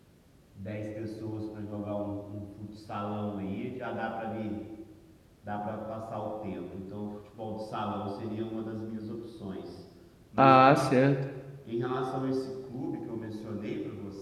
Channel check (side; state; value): both; identical; correlation 1.00